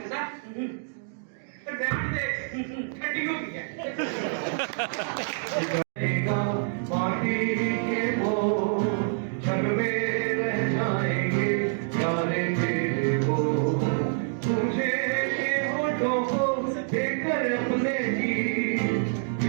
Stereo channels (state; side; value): silent; left; digital silence